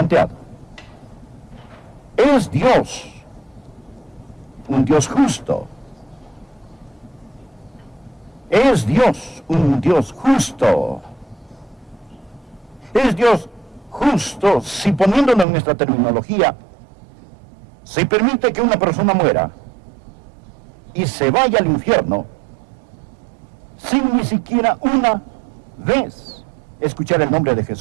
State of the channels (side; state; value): left; drops out; at 15.5 s